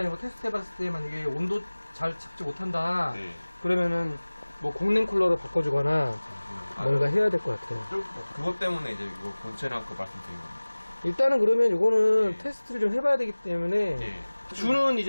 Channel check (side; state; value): both; inverted; correlation -1.00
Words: 거 테스트 해봤을 때 만약에 온도 잘 잡지 못한다. 네. 그러면은 뭐 공랭 쿨러로 바꿔주거나 뭔가 해야 될 것 같아요. 그것 때문에 이제 이거 본체랑 그 말씀드린 겁니다. 일단은 그러면 이거는 네. 테스트를 좀 해봐야 되기 때문에 예. 주는